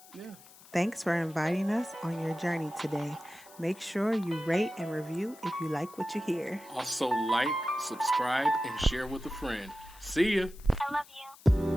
Yeah. Thanks for inviting us on your journey today. Make sure you rate and review if you like what you hear. Also like, subscribe, and share with a friend. See ya. I love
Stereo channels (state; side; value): noise; left; hiss, 22 dB below the sound